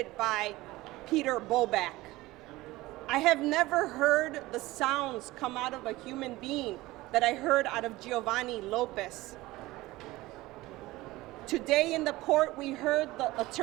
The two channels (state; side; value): quieter; left; 18.9 dB